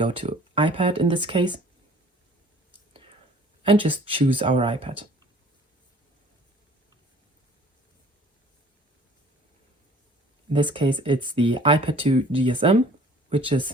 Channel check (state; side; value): normal; both; correlation 0.51